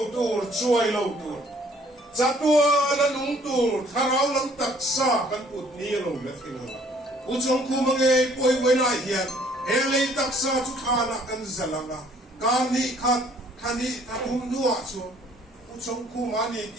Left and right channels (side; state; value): both; normal; correlation 0.59